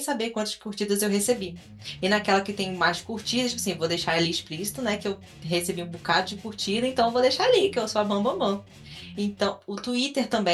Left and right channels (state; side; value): identical; both; correlation 1.00